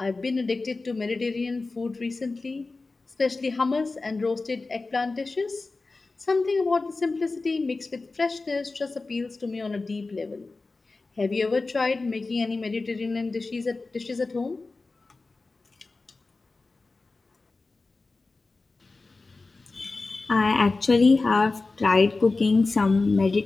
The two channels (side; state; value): right; quieter; 3.6 dB